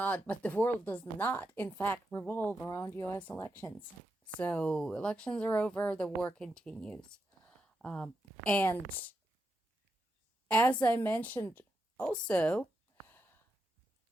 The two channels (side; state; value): both; normal; correlation 0.85